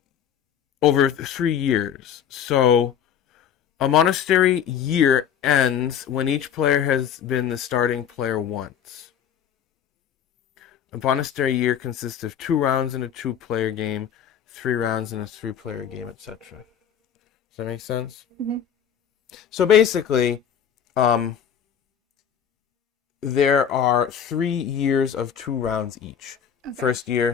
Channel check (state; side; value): quieter; right; 8.6 dB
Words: over 3 years. So a monastery year ends when each player has been the starting player once. A monastery year consists of 2 rounds in a 2-player game, 3 rounds in a 3-player game, etc. Does that make sense? Mm-hmm. So basically, there are 3 years of 2 rounds each. Okay. First